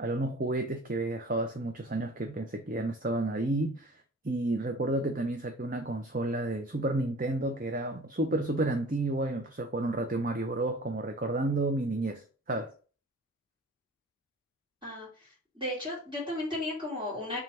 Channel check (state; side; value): normal; both; correlation 0.45